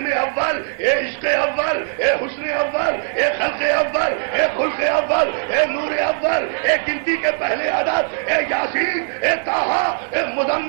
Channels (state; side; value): silent; left; 59 dB below the other